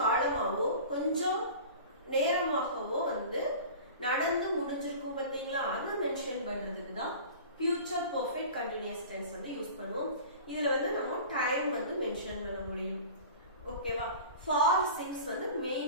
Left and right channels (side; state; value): both; inverted; correlation -0.38